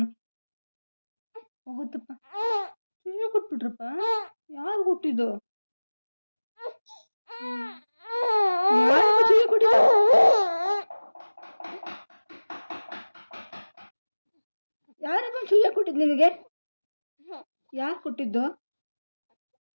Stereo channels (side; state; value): both; inverted; correlation -1.00